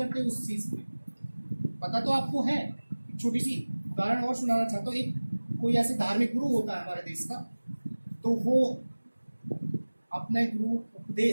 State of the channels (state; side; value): inverted; both; correlation -1.00